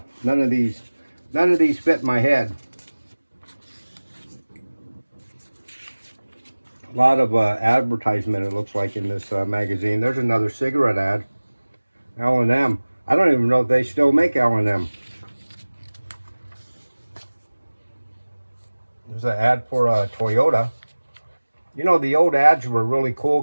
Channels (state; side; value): inverted; both; correlation -1.00